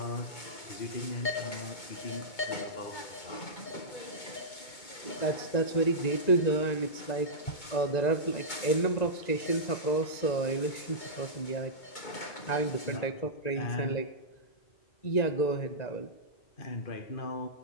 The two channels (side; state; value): right; late; 2.2 ms